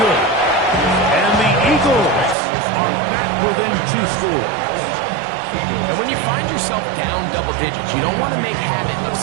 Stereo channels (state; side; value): drops out; left; at 2.4 s